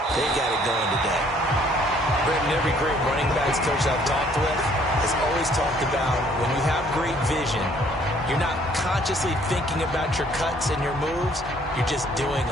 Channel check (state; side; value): normal; both; correlation 0.61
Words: they got it going today. Brendan, every great running backs coach I've talked with has always talked about when you have great vision, you're not consciously thinking about your cuts and your moves. You're just doing